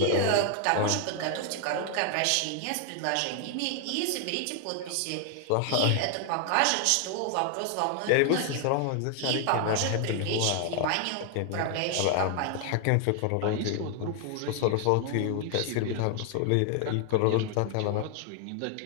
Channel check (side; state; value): both; different; correlation 0.00